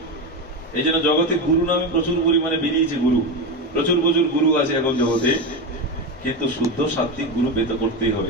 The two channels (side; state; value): both; normal; correlation 0.16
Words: এই জন্য জগতে গুরু নামে প্রচুর পরিমাণে বেরিয়েছে। গুরু প্রচুর প্রচুর গুরু আছে এখন জগতে, কিন্তু শুদ্ধ সাত্বিক গুরু পেতে করতেই